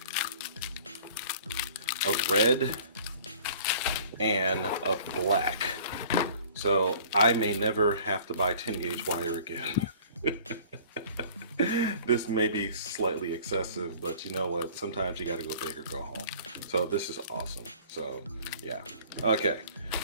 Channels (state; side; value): inverted; both; correlation -0.49